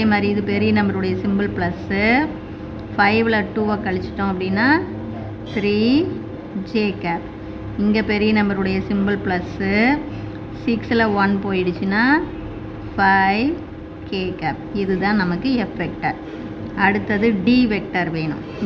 மாதிரி இது பெரிய நம்பருடைய சிம்பிள் ப்ளஸ்ஸு, 5ல் 2வை கழிச்சிட்டோம் அப்படின்னா 3j cap. இங்கே பெரிய நம்பருடைய சிம்பிள் ப்ளஸ்ஸு, 6ல் 1 போயிடுச்சுன்னா 5k cap. இதுதான் நமக்கு F வெக்டர். அடுத்தது D வெக்டர் வேணும்.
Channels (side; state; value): both; identical; correlation 1.00